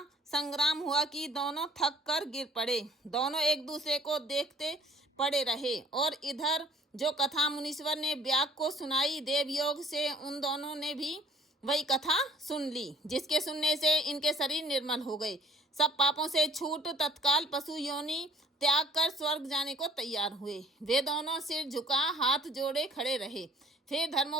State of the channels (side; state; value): both; normal; correlation 0.55